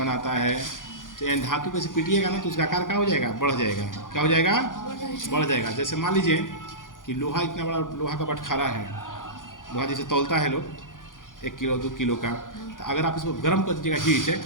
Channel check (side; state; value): right; late; 0.89 ms